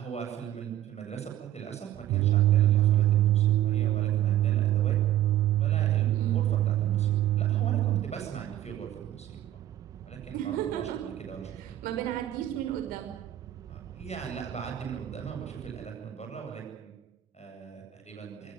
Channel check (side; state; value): left; quieter; 13.0 dB